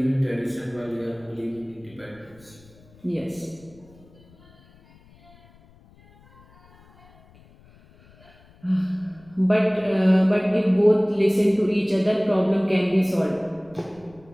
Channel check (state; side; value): noise; left; rumble, 27 dB below the sound